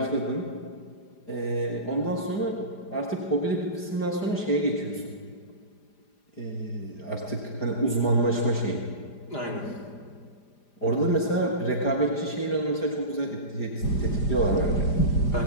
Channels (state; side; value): late; right; 5.0 ms